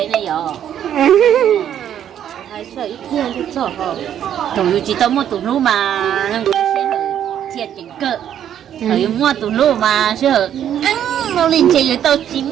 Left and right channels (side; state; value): left; quieter; 10.0 dB